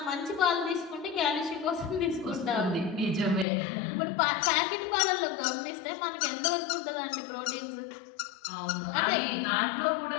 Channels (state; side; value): drops out; right; at 3.5 s